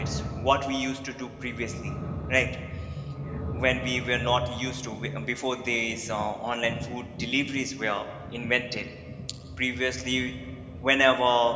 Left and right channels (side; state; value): both; identical; correlation 1.00